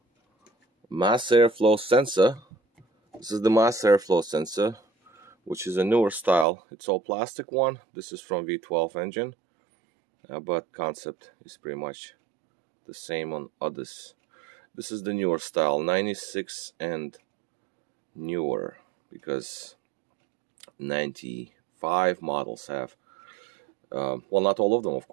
Mass Air Flow sensor. This is the Mass Air Flow sensor, which is a newer style. It's all plastic one. This is from V12 engine, but concept is pretty much the same on others. This is the newer style, 96 and newer, because 95 models have well, not all of them, of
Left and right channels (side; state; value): left; drops out; at 6.5 s